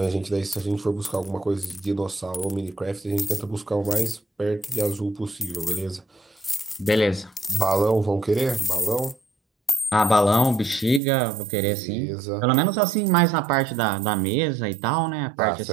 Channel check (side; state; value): left; drops out; at 11.0 s